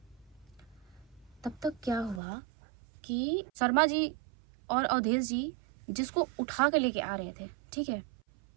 तब तक क्या हुआ कि शर्मा जी और अवधेश जी जिसको उठा के लेके आ रहे थे, ठीक है,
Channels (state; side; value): drops out; left; at 2.2 s